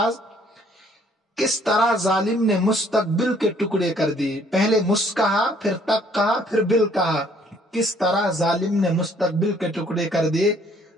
کس طرح ظالم نے مستقبل کے ٹکڑے کر دیے. پہلے مس کہا، پھر تک کہا، پھر بل کہا، کس طرح ظالم نے مستقبل کے ٹکڑے کر دیے.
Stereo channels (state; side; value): normal; both; correlation 0.62